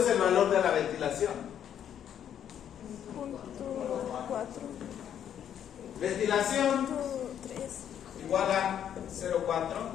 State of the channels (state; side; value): quieter; right; 9.5 dB